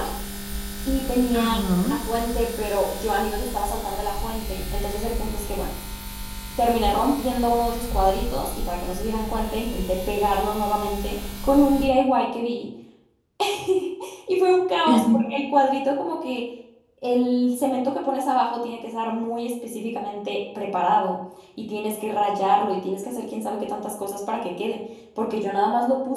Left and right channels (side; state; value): both; identical; correlation 1.00